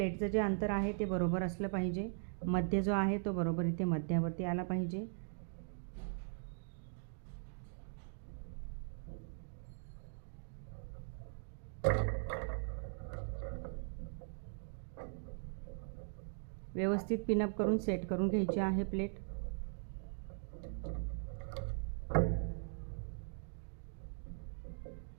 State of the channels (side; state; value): left; silent; digital silence